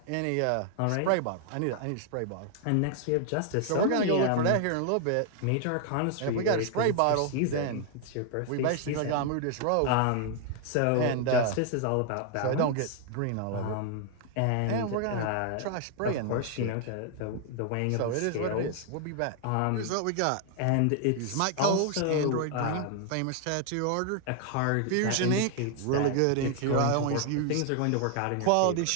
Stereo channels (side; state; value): both; different; correlation 0.00